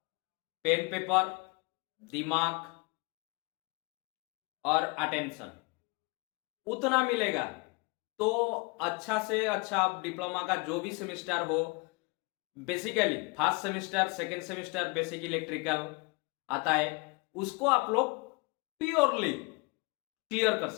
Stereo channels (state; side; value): quieter; right; 28.1 dB